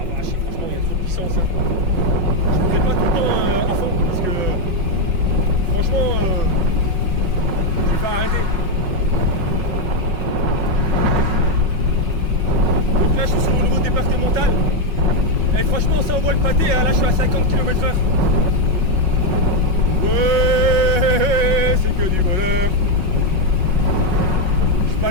vache, franchement il y a trop de puissance. Hein. Je ne fais pas tout le temps à fond parce que franchement je vais pas arrêter. Donc là je suis sur le niveau départemental. Et franchement ça envoie le pâté, hein. Là je suis à 50 km/h. Ouais, c'est que du bonheur. Je peux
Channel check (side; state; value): left; late; 5.4 ms